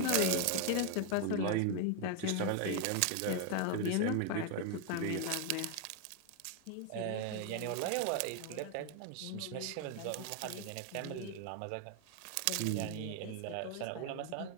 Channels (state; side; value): different; both; correlation 0.00